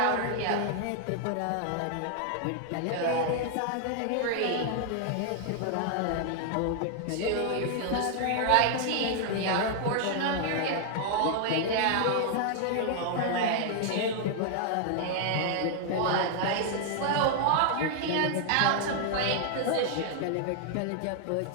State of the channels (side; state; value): both; different; correlation 0.00